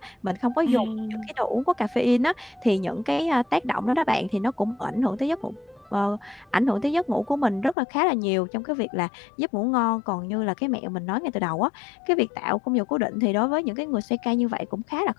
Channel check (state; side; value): drops out; right; at 7.8 s